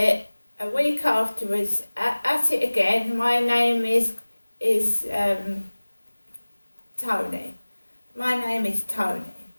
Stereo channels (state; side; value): inverted; both; correlation -1.00